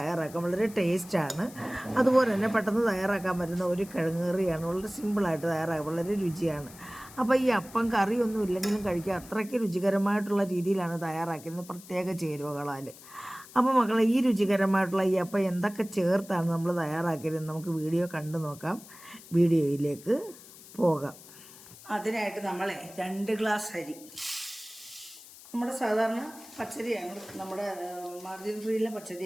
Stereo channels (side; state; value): left; noise; hiss, 19 dB below the sound